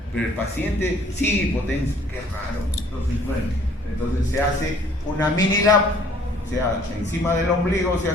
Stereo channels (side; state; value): both; normal; correlation 0.57